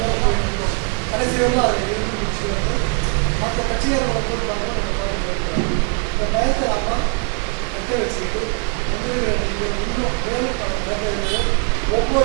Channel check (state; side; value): quieter; left; 37.2 dB